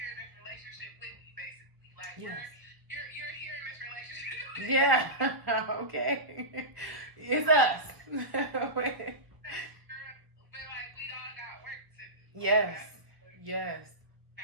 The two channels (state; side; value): late; left; 1.2 ms